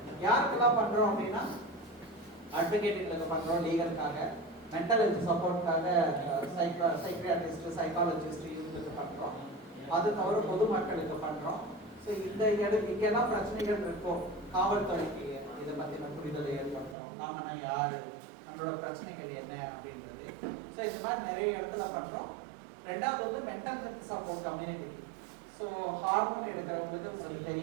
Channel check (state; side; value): drops out; left; at 16.9 s